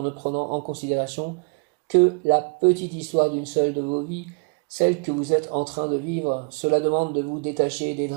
ne prenant en considération que la petite histoire d'une seule de vos vies, celle que vous êtes en train de vivre. Cela demande de vous détacher des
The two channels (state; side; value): quieter; left; 34.3 dB